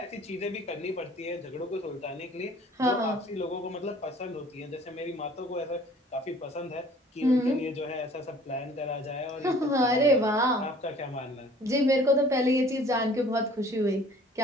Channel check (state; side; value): normal; both; correlation 0.52